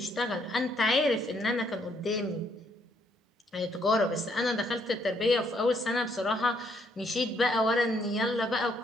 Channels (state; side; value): normal; both; correlation 0.71